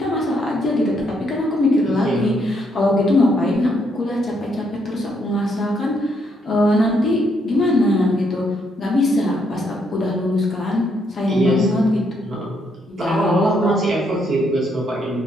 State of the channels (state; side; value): normal; both; correlation 0.74